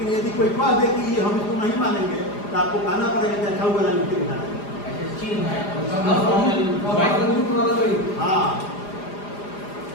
यदि कोई कह दे कि हम इसको नहीं मानेंगे तो आपको कहना पड़ेगा कि अच्छा वाला लिख के दिखाना है। हाँ,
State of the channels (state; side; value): late; right; 4.9 ms